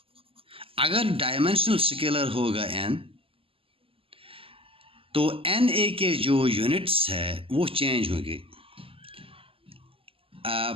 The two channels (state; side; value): late; left; 0.26 ms